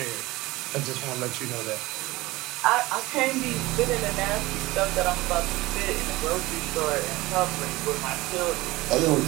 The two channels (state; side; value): quieter; left; 19.9 dB